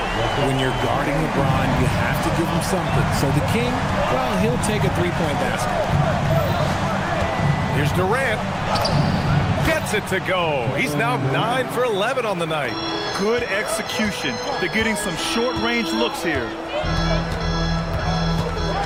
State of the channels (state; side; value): identical; both; correlation 1.00